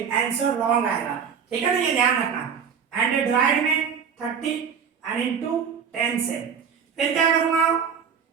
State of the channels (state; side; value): quieter; left; 7.0 dB